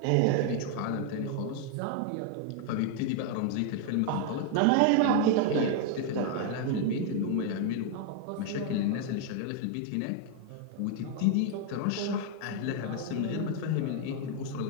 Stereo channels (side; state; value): both; different; correlation 0.00